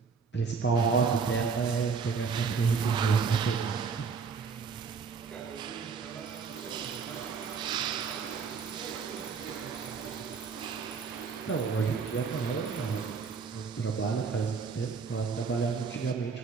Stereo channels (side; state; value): left; quieter; 5.5 dB